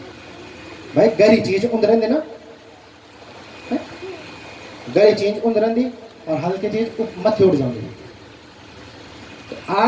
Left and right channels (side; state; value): both; identical; correlation 1.00